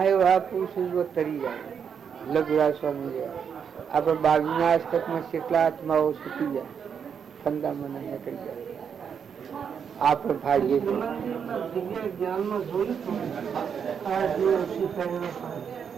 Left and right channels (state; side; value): quieter; left; 7.2 dB